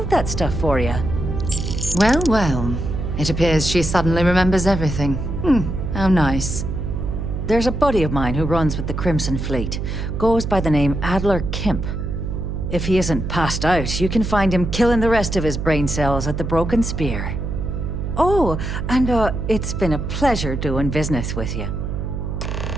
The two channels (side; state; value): right; noise; hum, 3 dB below the sound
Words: that stuff for you. Well, well. It appears she suddenly remembers everything. How nice. There's a buddy of mine who runs with the Crimson Fleet. Goes by the name Adler Kemp. If he isn't passed out, you can find him killing the rest of his brain cells at the Broken Spear. Oh, and it's been a pleasure doing business with you.